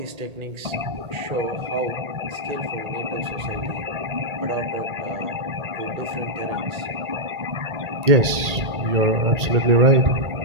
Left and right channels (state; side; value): late; left; 1.8 ms